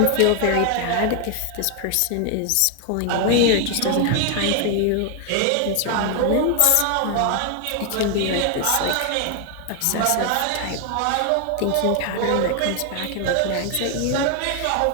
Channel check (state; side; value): different; both; correlation 0.00